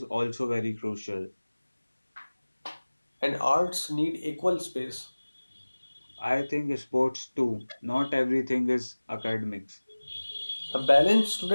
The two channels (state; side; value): inverted; both; correlation -1.00